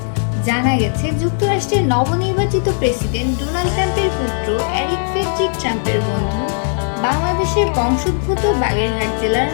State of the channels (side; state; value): right; silent; 65 dB below the other